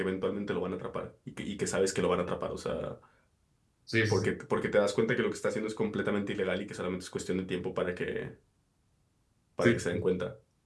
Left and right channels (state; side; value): identical; both; correlation 1.00